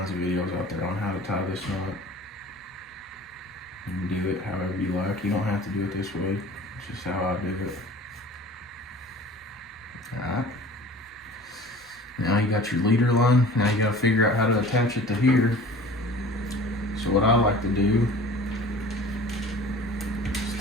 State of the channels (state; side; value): normal; both; correlation 0.43